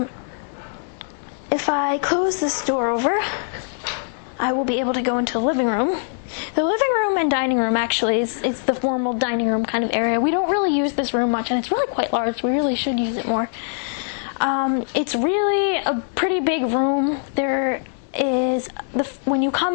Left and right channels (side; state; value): right; silent; 64 dB below the other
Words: If I close this door over, I will be able to go into the living room. The living room and dining room actually is the formal dining room kind of area. We don't really use this room much, and it's really quite large. We really should use it more. It's really a pretty big room. There is, when you